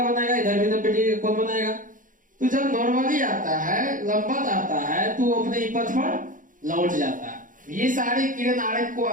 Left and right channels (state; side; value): late; left; 0.39 ms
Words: बनाएगा, इधर भी 90 डिग्री का कोण बनाएगा। तो जब नॉर्मली आता है, लंबवत आता है तो अपने ही पथ पर लौट जाता है। ये सारे किरण आरेख को